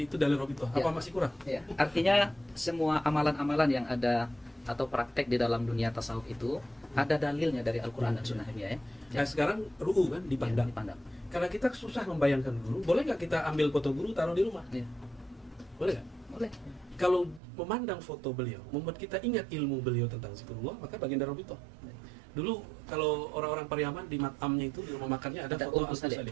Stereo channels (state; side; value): drops out; left; at 17.4 s